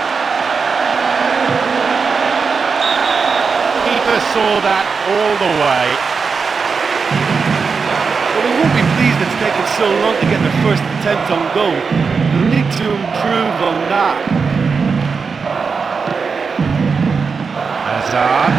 Keeper saw that all the way. Well, they won't be pleased it's taken so long to get their first attempt on goal. They'll need to improve on that.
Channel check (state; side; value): quieter; left; 5.2 dB